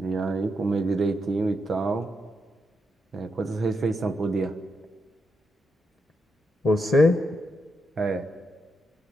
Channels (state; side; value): normal; both; correlation 0.82